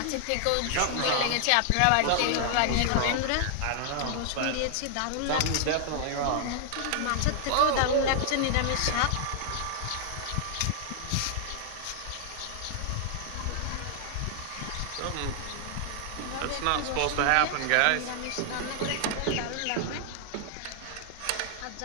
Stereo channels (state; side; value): different; both; correlation 0.00